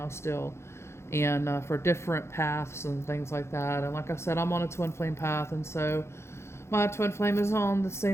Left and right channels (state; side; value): late; right; 0.13 ms